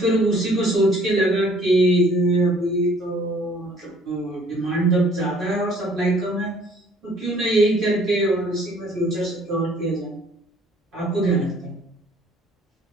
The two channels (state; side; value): normal; both; correlation 0.58